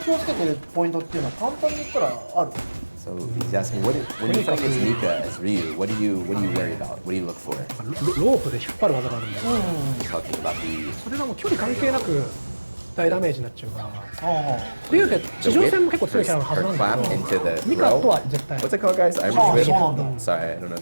をつけてるポイントっていうのは簡単に言ったらある。So he's asking, when you fight against Mika as Ryu, what do you worry about? What do you look for? ロープで引っ張る技があるんだよ、 He's talking about the それがもう距離関係なく大ダメージになっちゃうからあ竜って地上戦も結構強いキャラのはず her なんだ clap け into ど the ミカと throw. は絶対 What's it called, guys? Irish あ、 whip? そうなんだ。 Sorry, I don't know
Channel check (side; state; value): both; inverted; correlation -1.00